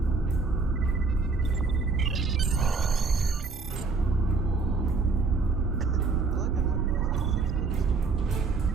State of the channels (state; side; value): quieter; left; 4.3 dB